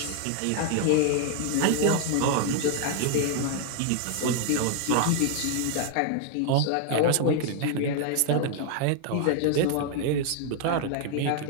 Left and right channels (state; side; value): different; both; correlation 0.00